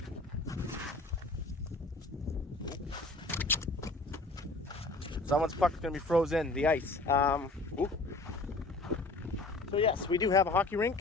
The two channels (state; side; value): quieter; right; 3.0 dB